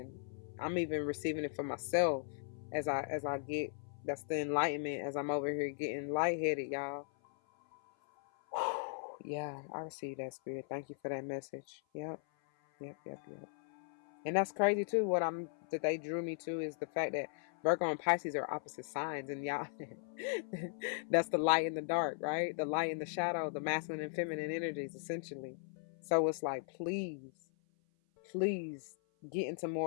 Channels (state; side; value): silent; right; 53 dB below the other